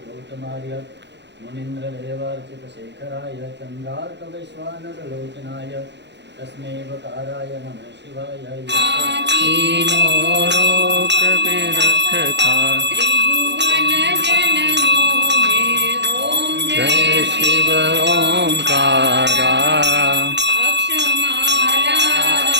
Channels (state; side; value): late; left; 0.51 ms